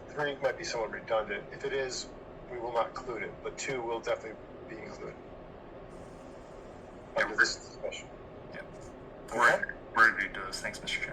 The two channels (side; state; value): both; identical; correlation 1.00